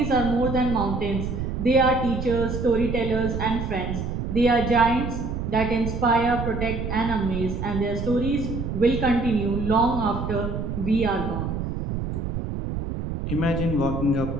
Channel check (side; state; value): right; noise; rumble, 4 dB below the sound